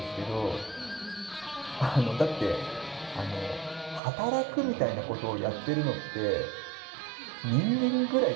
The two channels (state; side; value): drops out; left; at 4.0 s